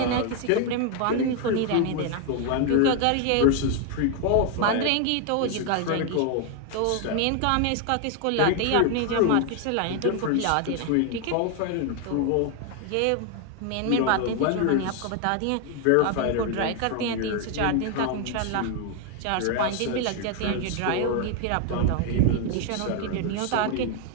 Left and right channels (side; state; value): both; different; correlation 0.01